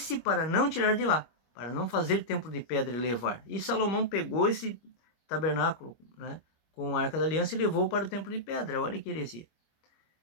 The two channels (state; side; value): late; right; 25 ms